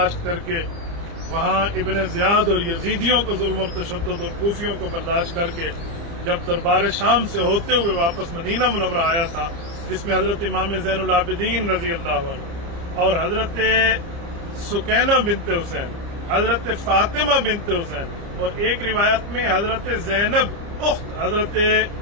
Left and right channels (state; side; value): late; left; 29 ms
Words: کر کے وہاں ابن زیاد اور یزیدیوں کو ظلم اور تشدد اور کوفیوں کو برداشت کر کے جب دربار شام سے ہوتے ہوئے واپس مدینہ منورہ آیا تھا، جس میں حضرت امام زین العابدین رضی اللہ عنہ اور حضرت سکینہ بنت حسین، حضرت فاطمہ بنت حسین، اور ایک روایت میں حضرت زینب اخت حضرت